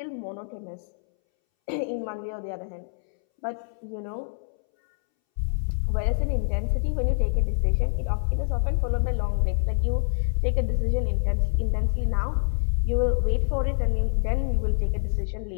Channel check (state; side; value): silent; right; 61 dB below the other